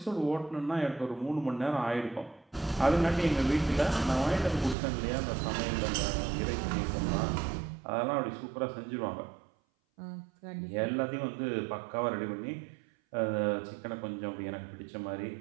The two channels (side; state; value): left; drops out; at 4.8 s